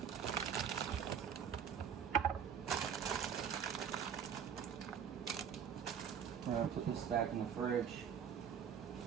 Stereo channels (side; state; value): left; quieter; 7.9 dB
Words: I'm gonna put this back in the fridge.